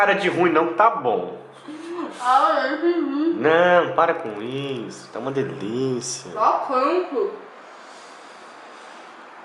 de ruim não, que tá bom. Ah, eu entendi. Não, para com isso, tá uma delícia. Só quanto?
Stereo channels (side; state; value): both; identical; correlation 1.00